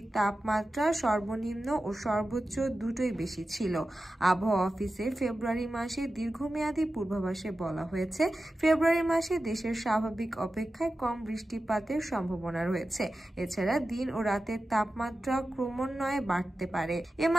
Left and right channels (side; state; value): both; normal; correlation 0.93